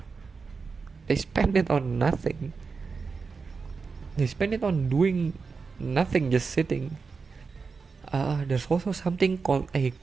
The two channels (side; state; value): left; quieter; 4.9 dB